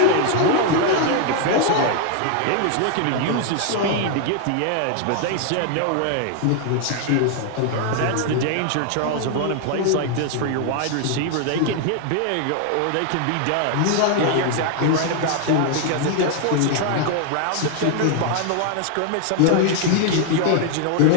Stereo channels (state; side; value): different; both; correlation 0.00